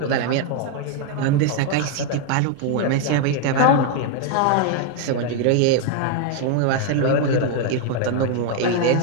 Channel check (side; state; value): both; different; correlation 0.00